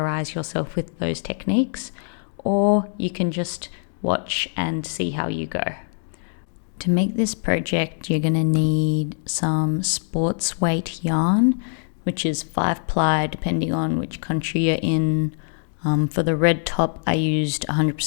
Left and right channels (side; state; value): right; silent; digital silence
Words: yourself with those techniques, or you can just watch and see how you go. To make this project, you're going to need some sports weight yarn, which is 5-ply depending on which country you're in. For the red top, I used